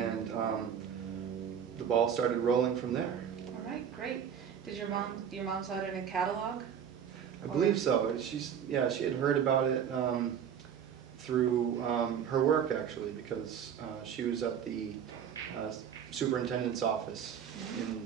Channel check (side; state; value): left; quieter; 8.2 dB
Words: the ball started rolling from there. All right, great. Did your mom saw it in a catalog? I believe so. She had heard about it through her work, actually, because she was at the superintendent's office